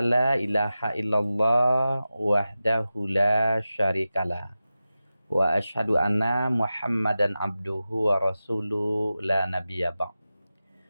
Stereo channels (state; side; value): inverted; both; correlation -0.94